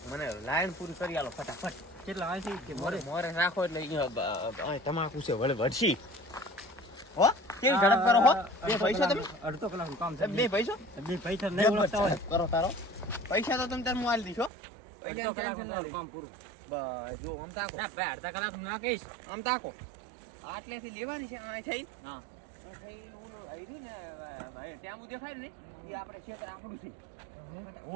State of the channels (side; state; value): left; drops out; at 14.5 s